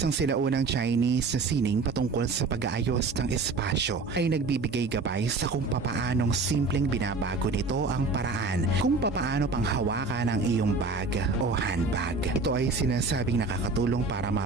sinaunang Chinese na sining patungkol sa pag-aayos ng espasyo, ay nagbibigay gabay sa kung papaanong simpleng binabago nito ang paraan kung papaano panghawakan ang iyong bag o handbag. Ito ay sinasabing nakakatulong para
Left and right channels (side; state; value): left; quieter; 3.9 dB